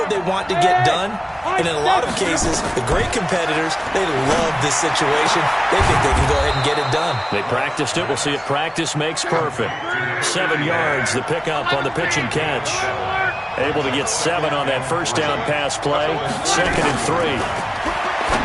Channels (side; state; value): both; identical; correlation 1.00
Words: they want to get done. And in a lot of cases, the great competitors, they love this situation. They think they can go ahead and get it done. They practiced it. We'll see if practice makes perfect. 7 yards, the pickup on the pitch and catch. Able to get 7 on that first down pass play. 2nd and 3.